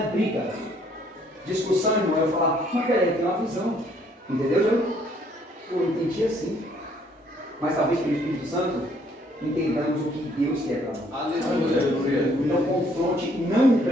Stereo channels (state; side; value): normal; both; correlation 0.65